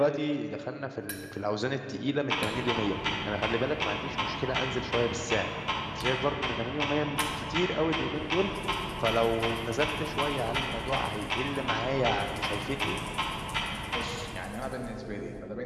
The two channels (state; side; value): identical; both; correlation 1.00